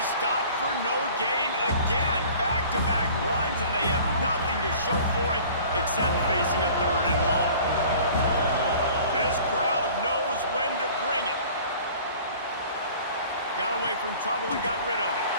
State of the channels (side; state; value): both; inverted; correlation -0.47